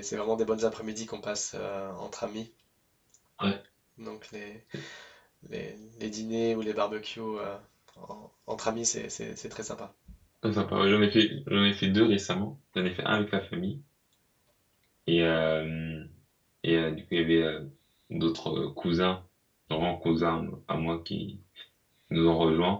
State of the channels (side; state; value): both; identical; correlation 1.00